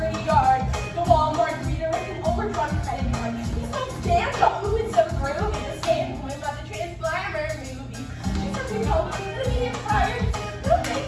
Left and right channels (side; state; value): both; identical; correlation 1.00